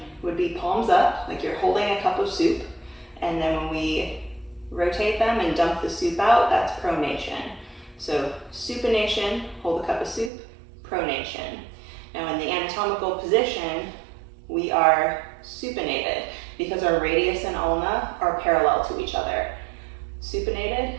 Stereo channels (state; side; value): drops out; left; at 10.3 s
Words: would be palms up, like you're holding a cup of soup, and then when we rotate them and dump the soup out, that's pronation. So supination, hold a cup of soup, pronation. Now in the anatomical position, we are supinated because our radius and ulna are parallel to each other. Supinated,